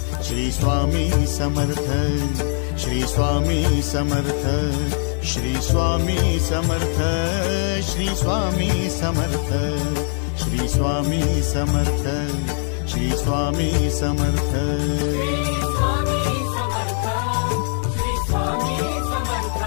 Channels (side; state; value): right; silent; 59 dB below the other